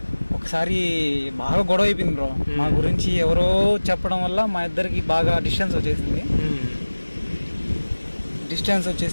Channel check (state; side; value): inverted; both; correlation -1.00